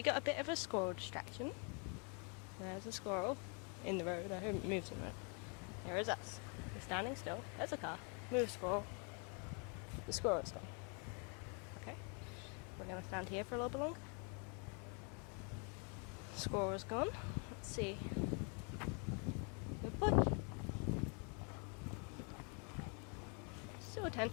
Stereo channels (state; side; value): quieter; right; 36.8 dB